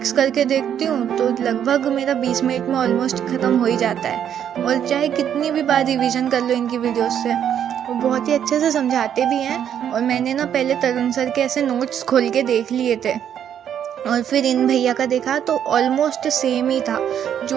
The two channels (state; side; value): quieter; left; 9.3 dB